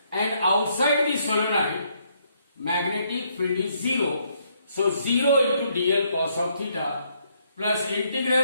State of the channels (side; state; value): both; inverted; correlation -0.72